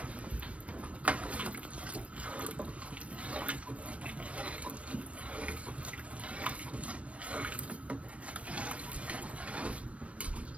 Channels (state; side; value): late; left; 0.063 ms